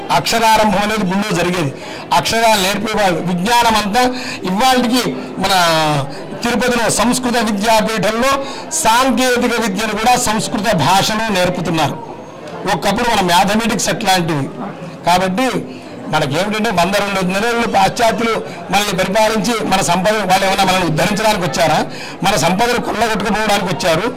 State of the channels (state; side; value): identical; both; correlation 1.00